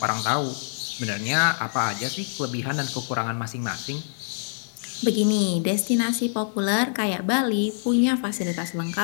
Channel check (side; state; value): right; silent; 58 dB below the other